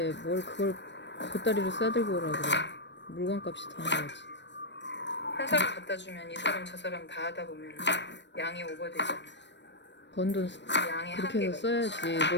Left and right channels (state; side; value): late; right; 0.52 ms